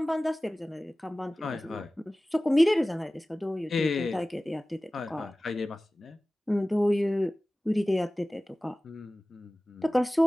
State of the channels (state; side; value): normal; both; correlation 0.97